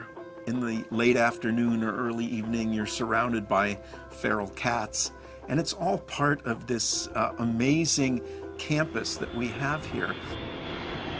in the late afternoon or early evening, you're surrounded by feral cats, and it's all part of this amazing campus that we have here.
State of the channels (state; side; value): identical; both; correlation 1.00